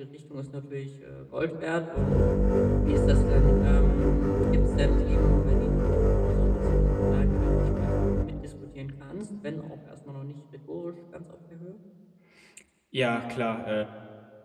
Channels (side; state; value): both; identical; correlation 1.00